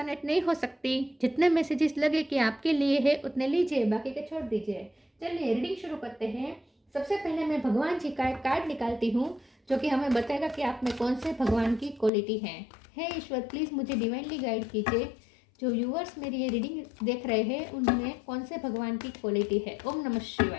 नहीं हो सकती। जितने मैसेजेस लगे कि आपके लिए है उतने लीजिए, बाकी के छोड़ दीजिए। चलिए रीडिंग शुरू करते हैं। सबसे पहले मैं भगवान जी का एक कार्ड निकालती हूँ जो कि हमें बताएगा कि आप में कौन से भगवान की क्वालिटी है। हे ईश्वर, प्लीज़ मुझे डिवाइनली गाइड कीजिए। जो व्यूअर्स मेरी ये रीडिंग देख रहे हैं उनमें कौन से भगवान की क्वालिटी है। ओम नमः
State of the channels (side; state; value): right; drops out; at 12.1 s